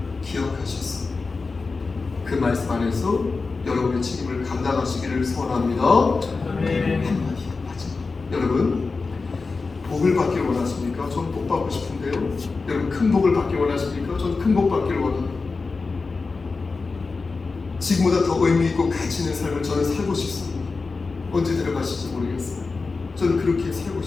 기억하셨습니다. 그 말씀 안에서 여러분의 책임을 감당하시기를 소원합니다. 한마디 마지막. 여러분, 복을 받기를 원하십니까? 전 복 받고 싶은데요. 여러분, 큰 복을 받기를 원하십니까? 전 큰 복 받기를 원합니다. 지금보다 더 의미 있고 가치 있는 삶을 저는 살고 싶습니다. 언제 들어가실지 모르겠어요. 저는 그렇게 살고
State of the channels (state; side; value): quieter; right; 4.2 dB